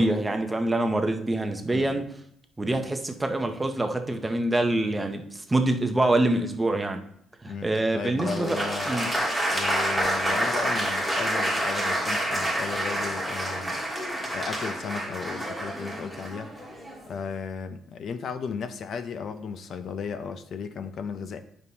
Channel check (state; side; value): normal; both; correlation 0.84